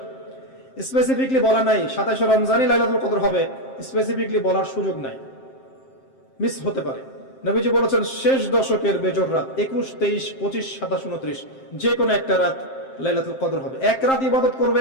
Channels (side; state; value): right; late; 7.6 ms